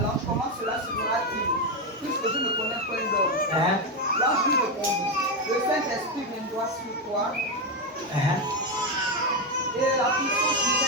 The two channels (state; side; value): normal; both; correlation 0.08